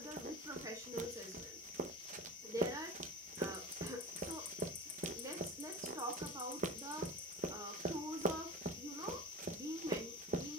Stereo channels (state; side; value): normal; both; correlation 0.31